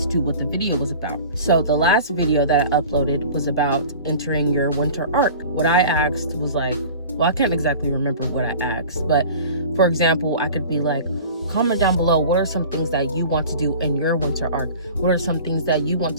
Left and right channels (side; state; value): both; inverted; correlation -0.41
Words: to what the video was about. So the last video that I uploaded was about entering your winter arc. What I asked was like, well, I can't exactly remember what I asked, but for example, I could be like, comment down below, what are some things that you want to do in your winter arc? What are some things that you want